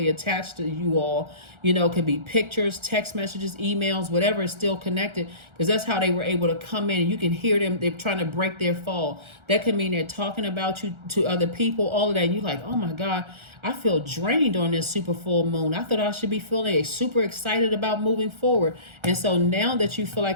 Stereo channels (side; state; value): left; late; 1.4 ms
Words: attached to you all. You know, it could be pictures, text messages, emails, whatever is still connected, because that's how they were able to come in, and you can hear them. They're trying to break their fall. That could mean they're talking about you to other people, all of that. And you're like, oh my God, I feel drained on this super full moon. I thought I should be feeling super excited about moving forward. And so now that you feel